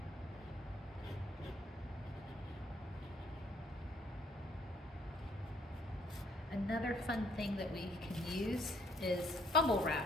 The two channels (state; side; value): normal; both; correlation 0.65